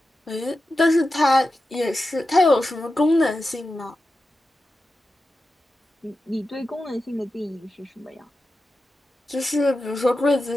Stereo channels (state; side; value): normal; both; correlation 0.91